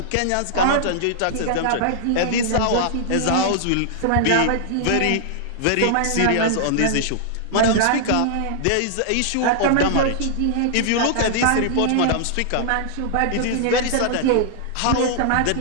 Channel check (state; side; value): different; both; correlation -0.01